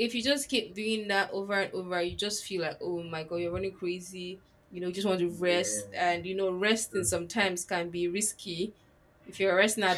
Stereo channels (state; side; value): identical; both; correlation 1.00